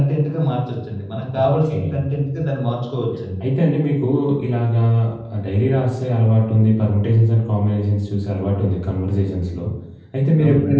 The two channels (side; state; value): both; identical; correlation 1.00